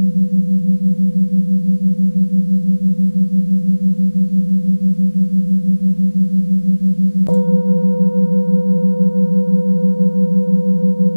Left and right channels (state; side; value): inverted; both; correlation -1.00